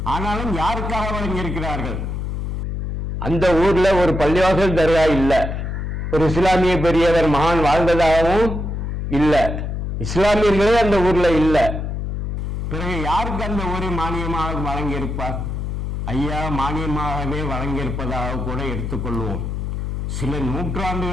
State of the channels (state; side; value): noise; left; hum, 3 dB below the sound